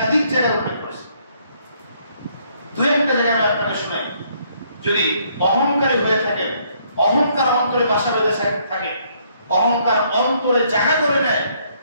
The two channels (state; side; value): inverted; both; correlation -0.68